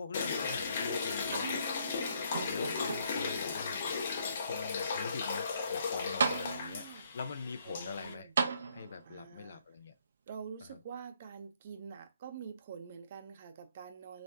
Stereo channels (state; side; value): inverted; both; correlation -0.69